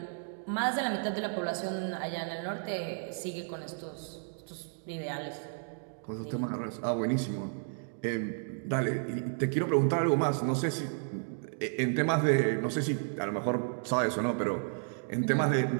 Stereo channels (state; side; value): silent; left; digital silence